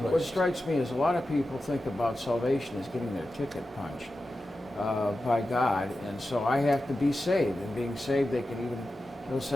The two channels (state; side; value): normal; both; correlation 0.92